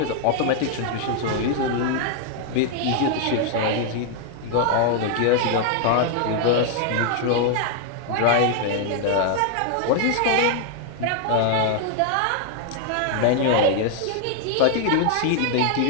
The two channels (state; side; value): different; both; correlation 0.00